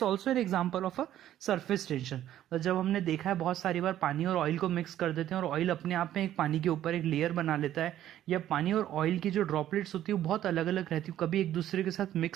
also an example of a surface tension. जब हमने देखा है बहुत सारी बार पानी और ऑयल को मिक्स कर देते हैं और ऑयल अपने आप में एक पानी के ऊपर एक लेयर बना लेता है, या पानी और ऑयल की जो ड्रॉपलेट्स होती है वो बहुत अलग अलग रहती है, कभी एक दूसरे के साथ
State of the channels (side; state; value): left; quieter; 12.1 dB